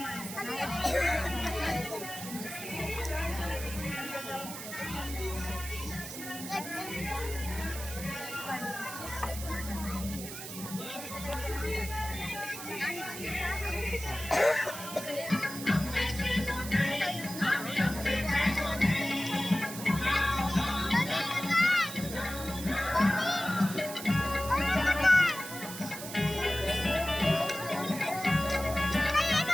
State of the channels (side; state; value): right; noise; hiss, 10 dB below the sound